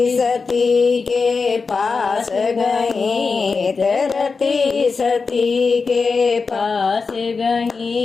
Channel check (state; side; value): quieter; right; 4.7 dB